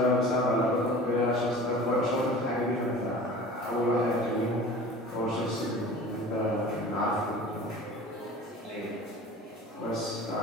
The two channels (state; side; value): normal; both; correlation 0.40